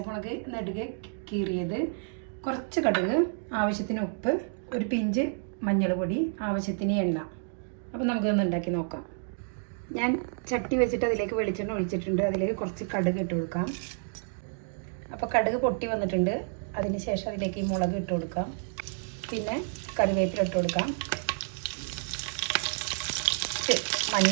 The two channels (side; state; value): left; silent; digital silence